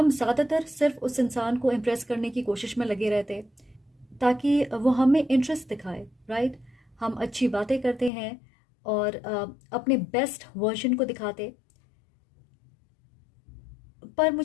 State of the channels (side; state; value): right; drops out; at 8.1 s